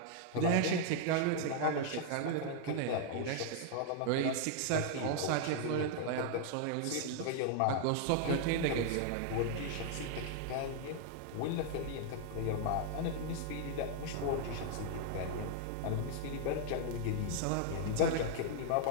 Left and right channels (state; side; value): different; both; correlation -0.01